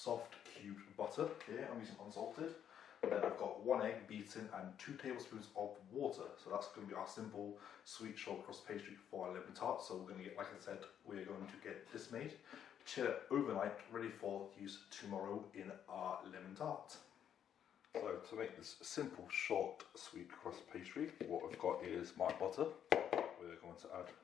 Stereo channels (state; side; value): quieter; right; 9.3 dB